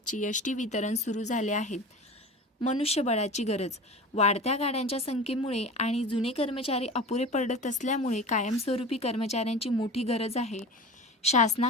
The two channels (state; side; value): normal; both; correlation 0.34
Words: एस.टी वितरण सुरू झाले आहेत. मनुष्यबळाची गरज वाढत्या गाड्यांच्या संख्येमुळे आणि जुने कर्मचारी अपुरे पडत असल्यामुळे कायमस्वरूपी कर्मचाऱ्यांची मोठी गरज आहे.